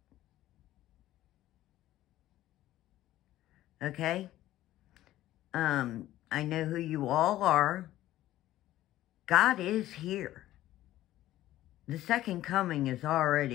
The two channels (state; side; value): quieter; right; 14.4 dB